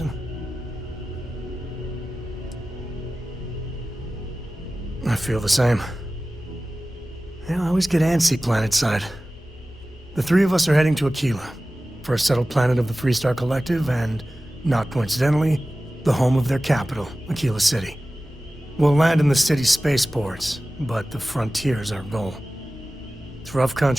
I feel the same. Yeah, I always get antsy planetside. The three of us are heading to Aquila, for a settled planet of the Freestar Collective, and, not coincidentally, the home of their capital, Aquila City. We'll land in the city's spaceports, but the frontier's our goal. It's rough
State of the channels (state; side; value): normal; both; correlation 0.96